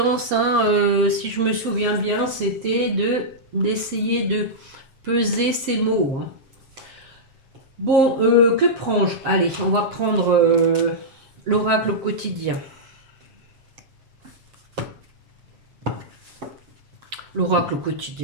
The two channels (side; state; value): left; late; 7.5 ms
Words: si je me souviens bien, c'était d'essayer de peser ces mots. Bon, que prends-je? Allez, on va prendre l'oracle au quotidien. L'oracle au